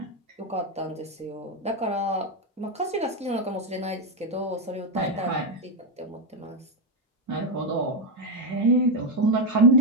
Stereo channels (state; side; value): normal; both; correlation 0.04